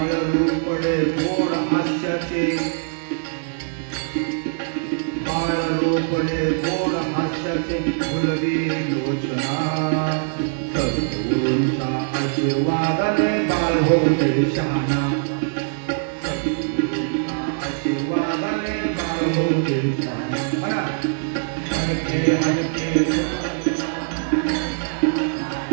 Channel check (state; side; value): silent; left; digital silence